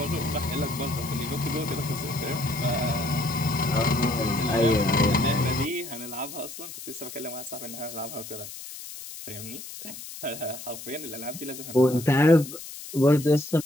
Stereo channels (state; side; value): noise; left; hiss, 12 dB below the sound